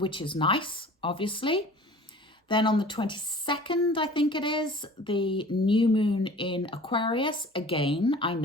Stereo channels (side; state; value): both; normal; correlation 0.45